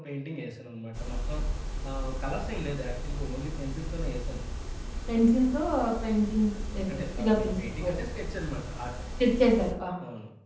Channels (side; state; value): both; identical; correlation 1.00